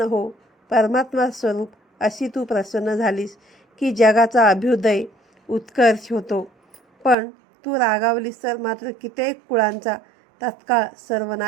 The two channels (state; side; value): drops out; left; at 7.2 s